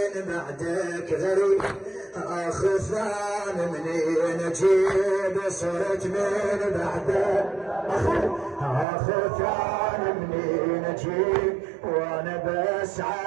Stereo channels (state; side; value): drops out; left; at 8.8 s